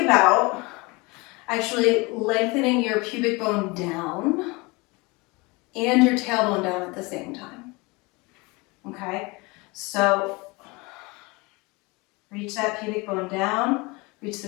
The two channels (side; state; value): right; quieter; 25.7 dB